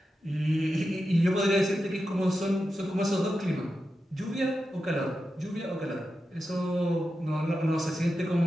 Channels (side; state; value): both; normal; correlation 0.90